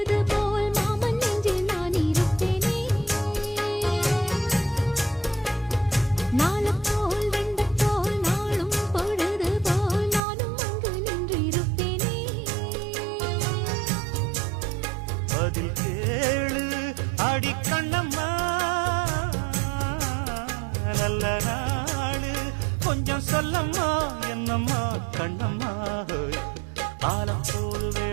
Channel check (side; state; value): left; drops out; at 10.2 s